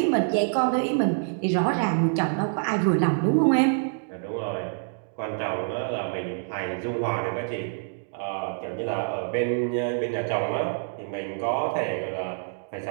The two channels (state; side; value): silent; left; digital silence